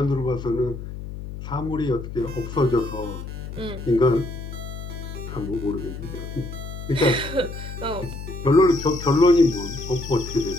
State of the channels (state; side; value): noise; left; hum, 9 dB below the sound